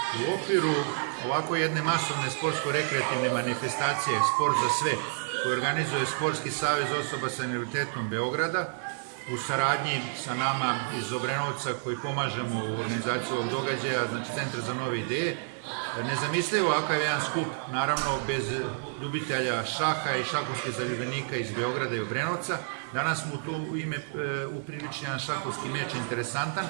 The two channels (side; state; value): left; silent; digital silence